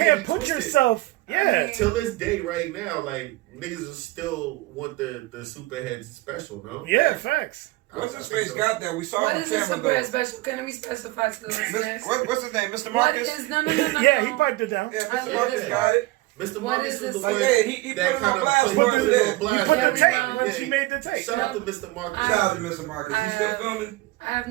get me put twisted. yourself. Yeah. Till this day, right now, like niggas are still want the superheads special, no? Yeah, facts. What's his face got that? We saw What him is this camera super though. special? Can we specify to the listeners? What's his name? Mr. What Marcus? is no? Yeah, he piped it down. Yeah, I Mr. love Marcus it. got it. Mr. What Marcus is was the this? one Like, yeah, he that put him on kind of blast put for it us on there. blast. You put the Yeah, tape when yeah. she made the tape. Shout out to Mr. Marcus. I- Shout out to Mr. Marcus. I He still have- filming? I have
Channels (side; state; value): left; quieter; 19.3 dB